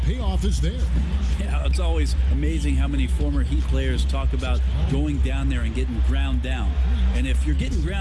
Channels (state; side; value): identical; both; correlation 1.00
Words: is there. Yeah, it's always amazing how many former Heat players talk about going down there and getting ground down. And if you're getting